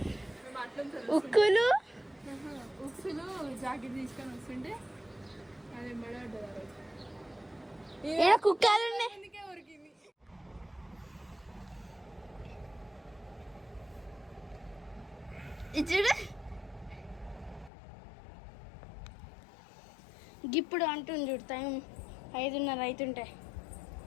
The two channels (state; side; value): drops out; right; at 17.7 s